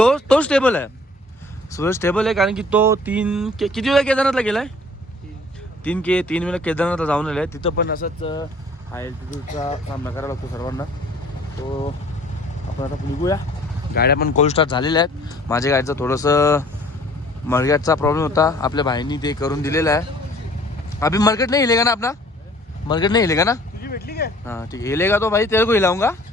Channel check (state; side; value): normal; both; correlation 0.53